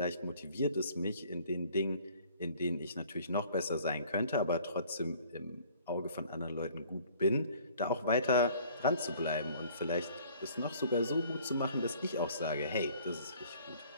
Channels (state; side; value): inverted; both; correlation -0.54